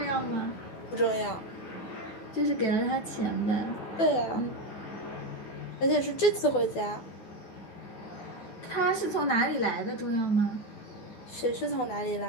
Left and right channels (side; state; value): right; late; 12 ms